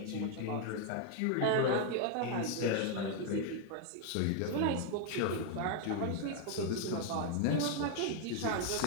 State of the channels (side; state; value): both; different; correlation 0.00